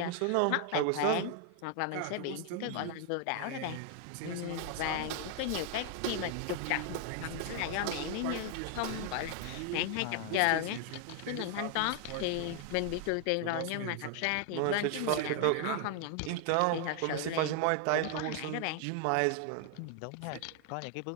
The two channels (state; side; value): different; both; correlation 0.00